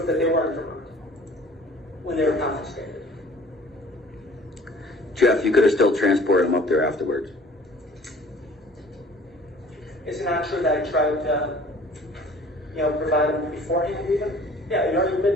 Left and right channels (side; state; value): both; normal; correlation 0.50